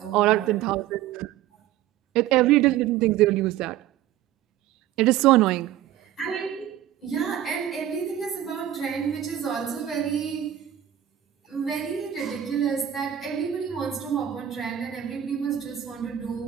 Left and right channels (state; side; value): quieter; left; 11.6 dB